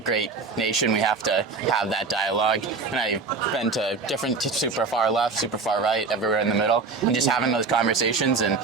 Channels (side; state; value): left; quieter; 4.3 dB